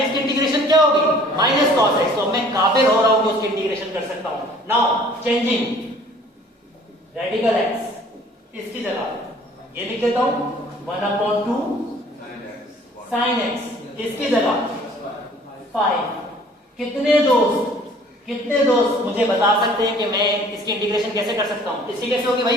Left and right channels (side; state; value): both; normal; correlation 0.53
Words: x की इंटीग्रेशन क्या होगी माइनस cos x, तो मैं काबिल हो रहा हूं कि उसकी इंटीग्रेशन कर सकता हूं। नाउ चेंजिंग रेडिकल x, इसकी जगह ये लिख देता हूं 1 अपॉन 2 sin x, इसकी जगह 5। कितने दोस्त मुझे बता सकते हैं कि मैं इसकी इंटीग्रेशन कैसे कर सकता हूं, इसकी कैसे होगी